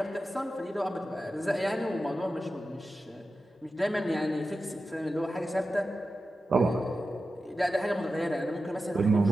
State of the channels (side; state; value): both; normal; correlation 0.92